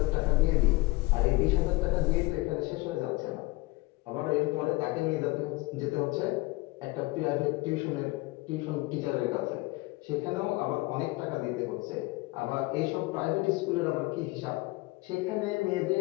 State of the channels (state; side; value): quieter; right; 22.2 dB